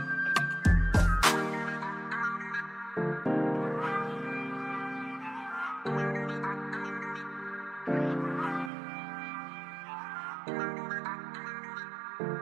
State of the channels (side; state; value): left; drops out; at 8.7 s